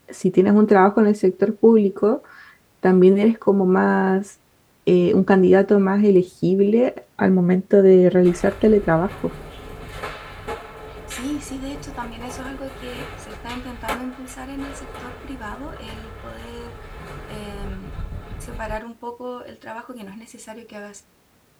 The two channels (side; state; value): both; identical; correlation 1.00